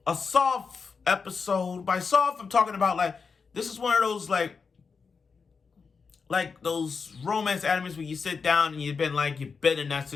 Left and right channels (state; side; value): quieter; right; 5.2 dB